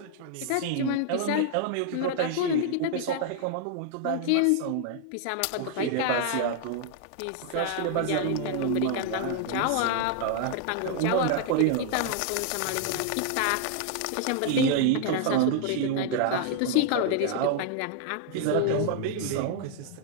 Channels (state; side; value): different; both; correlation 0.00